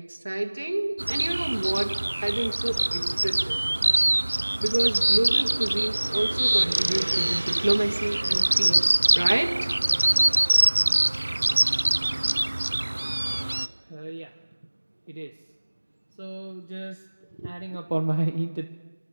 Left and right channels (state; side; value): inverted; both; correlation -1.00